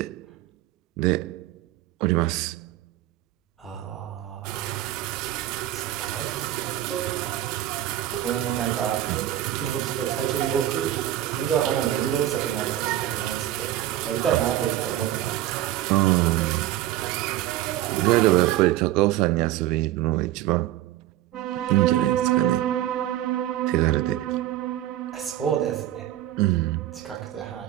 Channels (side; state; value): left; quieter; 13.6 dB